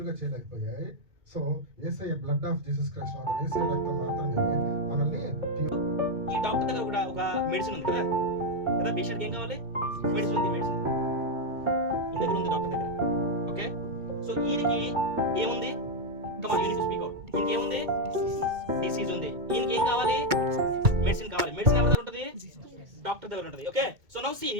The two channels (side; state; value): left; late; 2.2 ms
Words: చేయలేకపోయాయి. So Yesayya blood of Jesus Christ Yesayya రక్తం మాత్రమే మనల్ని ప్యూర్. ఈ డాక్టర్ దగ్గర కూడా ఒక మెడిసిన్ ఉంది కదా కదా పేషెంట్కి ఏం కావాలి? మెడిసిన్ ఉంది. మెడిసిన్ ఈ దగ్గర ఉంది డాక్టర్ దగ్గర. ఓకే, సో ఈయనకి ఏముంది? కమాన్, యూనిట్ టు స్పీక్ అవుట్. ఈయనకి ఏముంది? డిసీజ్ ఉంది. ఈయనకి ఏం కావాలి? మెడిసిన్ కావాలి. మెడిసిన్ ఎవరి దగ్గర ఉంటుంది? డాక్టర్ దగ్గర ఉంటుంది. ఓకే, సో నౌ సీ